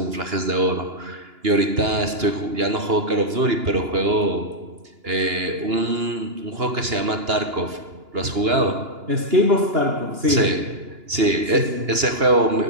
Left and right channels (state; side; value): late; left; 2.9 ms